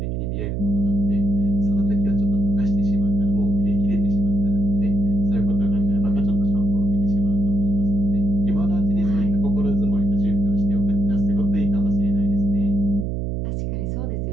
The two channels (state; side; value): noise; right; hum, 2 dB below the sound